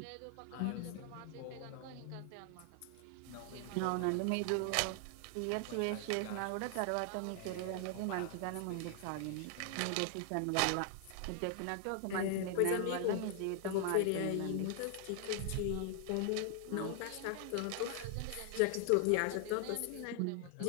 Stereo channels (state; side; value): different; both; correlation 0.00